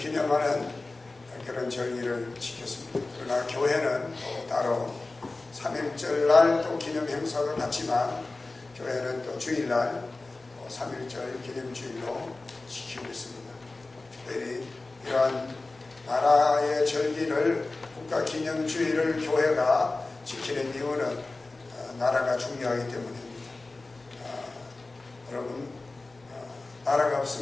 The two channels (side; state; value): right; quieter; 3.3 dB